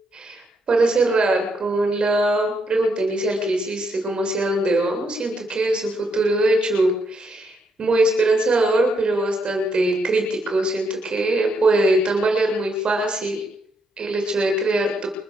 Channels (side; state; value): both; normal; correlation 0.77